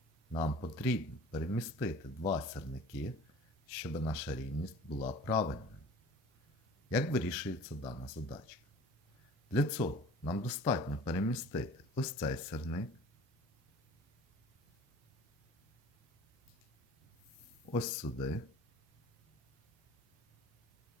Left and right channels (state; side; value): normal; both; correlation 0.44